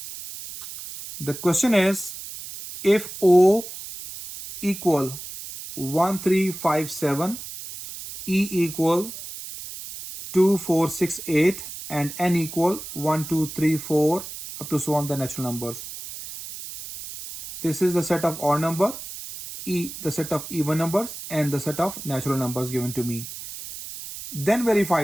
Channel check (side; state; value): right; noise; hiss, 11 dB below the sound